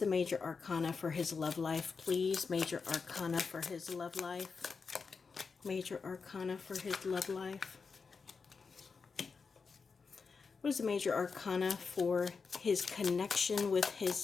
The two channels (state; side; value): quieter; right; 5.0 dB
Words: major arcana for his love life, please? Major arcana for his love life. Major arcana for his love life. What is the major arcana for his connection with